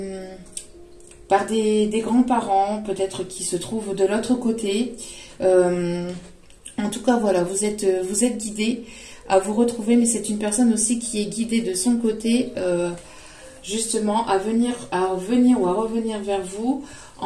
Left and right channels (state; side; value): identical; both; correlation 1.00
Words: grands-parents, peut-être qui se trouvent de l'autre côté. En tout cas, voilà, vous êtes guidé à vous retrouver, mais c'est une personne aussi qui est guidée de son côté, justement, à venir ou à revenir vers vous